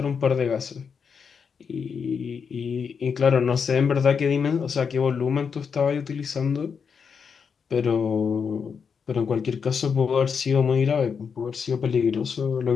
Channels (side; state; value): right; quieter; 6.3 dB